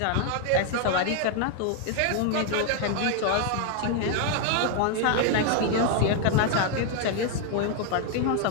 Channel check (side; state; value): both; different; correlation 0.00